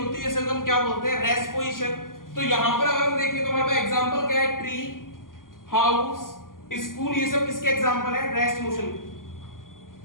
ऐसे को हम क्या बोलते हैं? Rest position. तो यहां पर अगर हम देखें तो हमारे पास एग्जांपल क्या है? ट्री, हाउस, स्कूल, ये सब किसके एग्जांपल है? रेस्ट मोशन,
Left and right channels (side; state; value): right; late; 0.91 ms